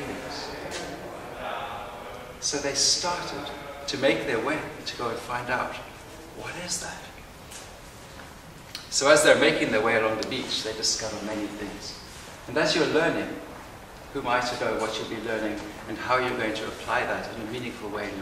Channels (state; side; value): identical; both; correlation 1.00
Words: So they started to make their way to go and find out, what is that? So as they're making their way along the beach, they discover many things. And as you're learning, who am I to know what you'll be learning and how you're going to apply that in a meaningful way in